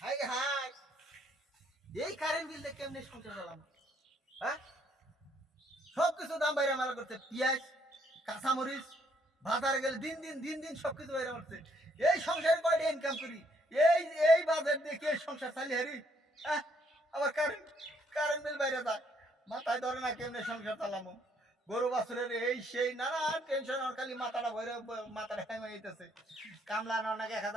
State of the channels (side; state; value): both; normal; correlation 0.69